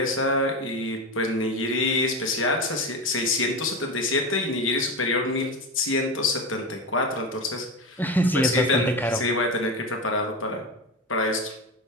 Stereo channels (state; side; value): normal; both; correlation 0.20